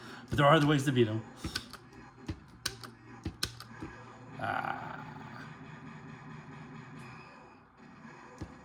there are other ways to beat him.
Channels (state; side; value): identical; both; correlation 1.00